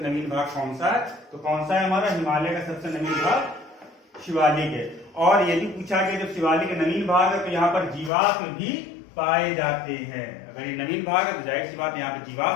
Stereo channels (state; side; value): drops out; right; at 8.1 s